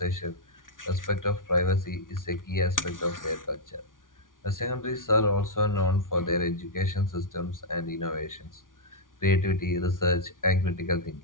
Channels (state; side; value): late; right; 0.88 ms